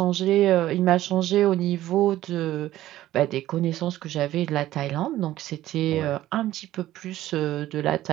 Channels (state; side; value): quieter; left; 14.4 dB